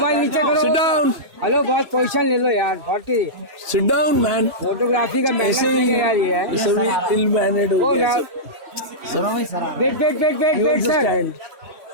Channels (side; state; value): left; late; 3.1 ms